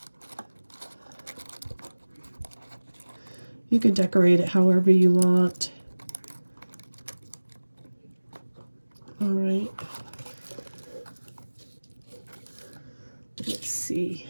You can decorate it however you want. All right. Let's see.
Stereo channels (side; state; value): both; inverted; correlation -1.00